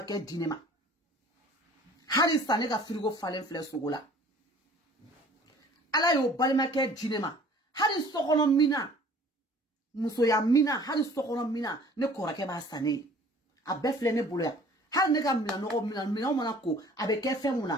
ke dinema Hari sane ka frigo falen fle sogola. Ala yo balima ke jinema. Hari sokono mina. Muso ya mina. Hari sokono mina. Ne korake ba sane. A befle ne bolo ya. Hari ne ka mina no mina mana ko. Abe ke fe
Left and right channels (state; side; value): normal; both; correlation 0.51